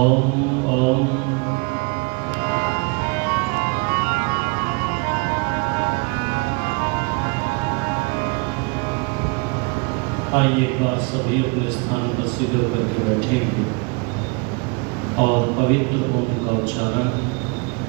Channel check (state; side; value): quieter; left; 30.4 dB